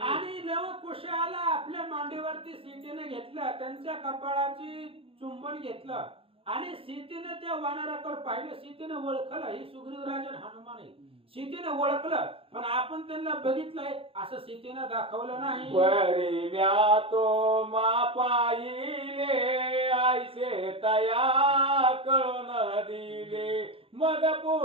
आणि लवकुशाला आपल्या मांडीवरती सीतेनं घेतलं, त्यांच्या कपाळाची चुंबन घेतलं आणि सीतेनं त्या वानराकडे पाहिलं. सीतेनं ओळखलं ही सुग्रीव राजन हनुमान आहे, सीतेनं ओळखलं पण आपण त्यांना बघितलंय असं सीतेनं दाखवलं नाही. बरी म्या तो मा पाहिले आयसे तया कळून दिले मग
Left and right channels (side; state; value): left; late; 0.27 ms